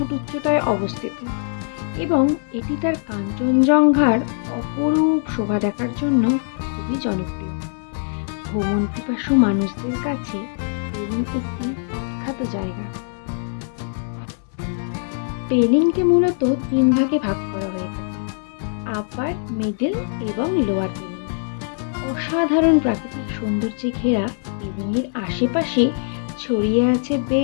উচ্চতায় অবস্থিত এবং এটি তার কাঞ্চনজঙ্ঘার অপরূপ শোভা দেখার জন্য খুবই জনপ্রিয়। ভ্রমণ পিপাসু মানুষদের কাছে পেলিং একটি বিখ্যাত জায়গা। পেলিংকে মূলত ৩ ভাগে ভাগ করা হয়ে থাকে: আপার, মিডল এবং লোয়ার পেলিং। অসাধারণ প্রাকৃতিক সৌন্দর্যে ঘেরা পেলিংয়ের আশেপাশে ছড়িয়ে আছে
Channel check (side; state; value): right; silent; digital silence